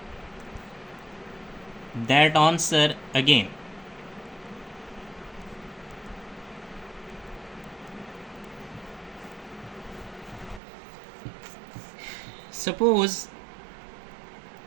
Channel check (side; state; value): left; drops out; at 10.6 s